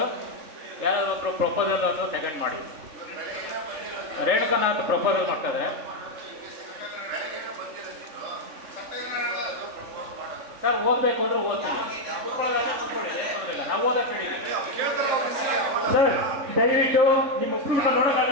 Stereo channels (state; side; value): late; left; 3.4 ms